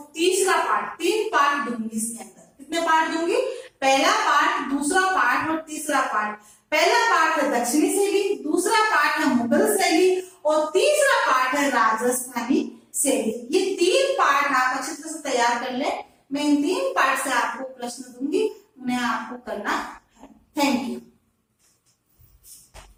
तीसरा पार्ट, 3 पार्ट दूंगी इसके अंदर। कितने पार्ट दूंगी? पहला पार्ट, दूसरा पार्ट और तीसरा पार्ट। पहला पार्ट है दक्षिणी शैली, दूसरा पार्ट है मुगल शैली और तीसरा पार्ट है राजस्थानी शैली। ये 3 पार्ट आप अच्छी तरह से तैयार कर ले। मैं इन 3 पार्ट से आपको प्रश्न दूंगी, उन्हें आपको करना है। Thank you.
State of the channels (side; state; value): both; identical; correlation 1.00